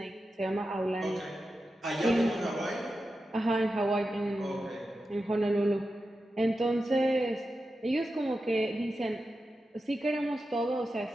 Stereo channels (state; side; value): normal; both; correlation 0.91